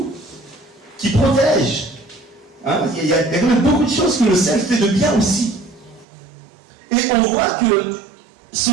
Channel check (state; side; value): drops out; left; at 6.1 s